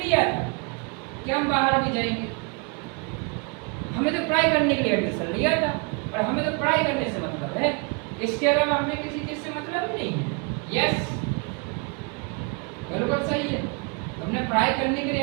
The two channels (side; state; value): left; quieter; 32.6 dB